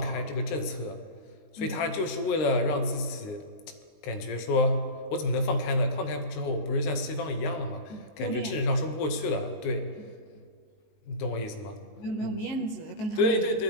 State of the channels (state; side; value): late; right; 19 ms